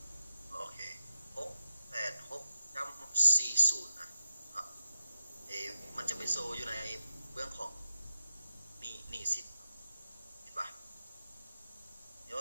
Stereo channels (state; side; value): inverted; both; correlation -0.88